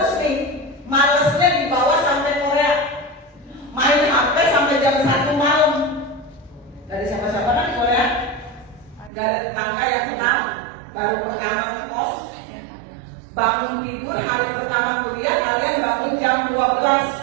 nih, malesnya dibawa sampai Korea. Main HP sampai jam 1 malam. Dari siapa-siapa kan di Korea? Gak ada tetangga yang kenal. Baru pertama ngekos. Bangun tidur hari pertama kuliah kalian bangun jam 12.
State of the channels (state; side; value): drops out; left; at 9.1 s